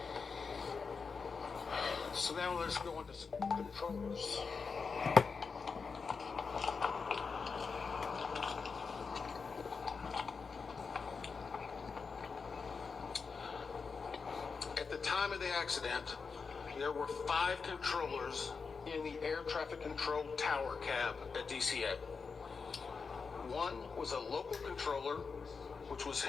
So now let's go into some controllers. At the time of the accident, there were 5 controllers in the air traffic control tower cab at DCA. One was a local controller, which was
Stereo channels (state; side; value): quieter; right; 5.1 dB